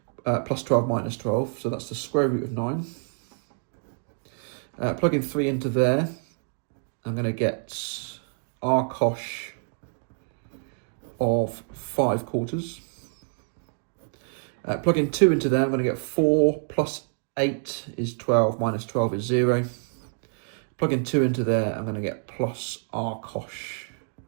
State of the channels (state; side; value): silent; left; 60 dB below the other